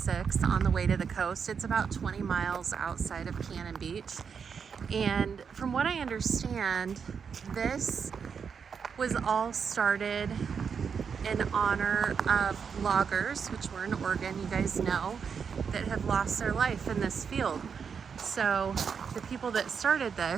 on the way to the coast. It's about 20 miles outside of Cannon Beach. And from what I understand, this was all started in honor of loggers, which were in Oregon, you guys know, that have lost their life in this field. So the people that started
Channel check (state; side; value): quieter; left; 6.4 dB